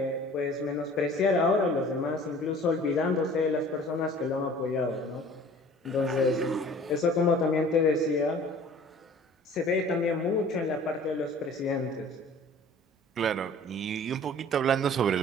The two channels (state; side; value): normal; both; correlation 0.48